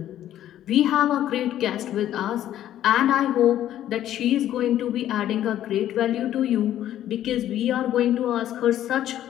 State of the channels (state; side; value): quieter; right; 12.0 dB